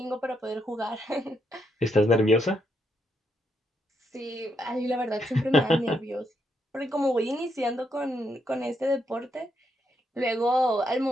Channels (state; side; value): normal; both; correlation 0.79